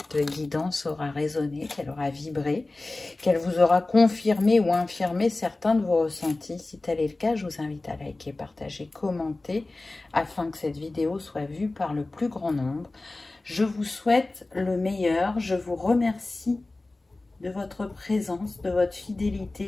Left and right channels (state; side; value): quieter; right; 3.1 dB